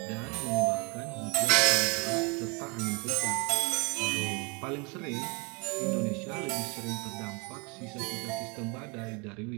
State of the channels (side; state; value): left; quieter; 31.2 dB